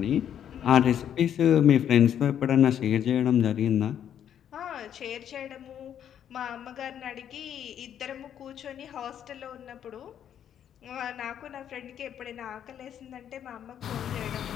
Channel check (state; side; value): quieter; right; 9.6 dB